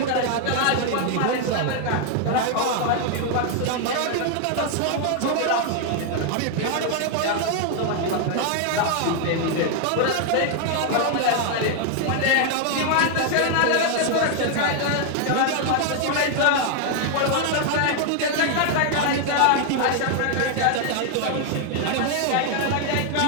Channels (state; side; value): different; both; correlation 0.00